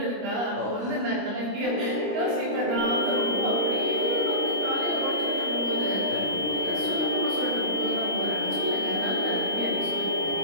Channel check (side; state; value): left; late; 25 ms